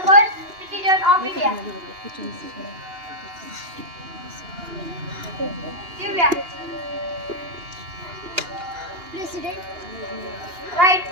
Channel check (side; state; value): left; late; 2.8 ms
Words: first citizen of India? Divya. President. Right,